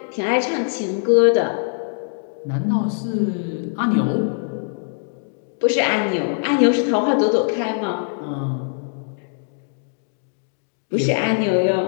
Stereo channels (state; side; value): silent; right; 64 dB below the other